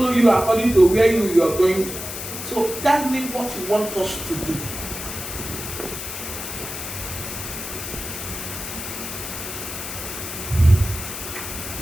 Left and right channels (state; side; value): noise; left; hiss, 7 dB below the sound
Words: you according to where you are going to. So tell me what you want us to do.